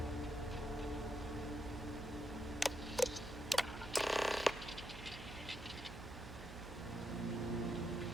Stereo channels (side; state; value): right; noise; hum, 11 dB below the sound